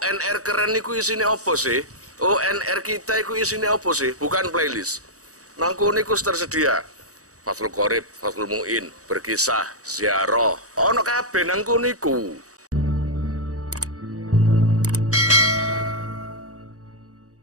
keren niku isine apa sih? ONR kita iku isine apa sih? Bukan playlist. Nangku niku tersedia. Fathul Qorib, Fathul Mu'in, berkisah, ziarah. Ono kabeh nangku niku.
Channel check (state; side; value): late; left; 0.66 ms